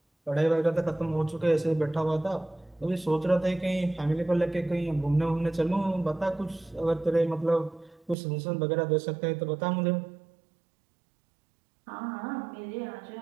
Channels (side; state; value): left; drops out; at 8.2 s